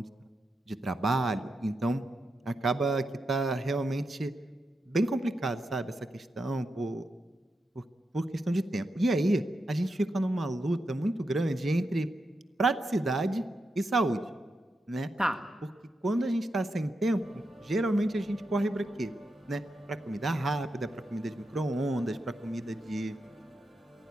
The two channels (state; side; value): normal; both; correlation 0.86